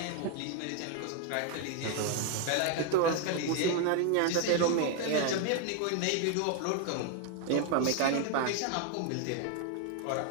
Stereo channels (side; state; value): both; different; correlation 0.01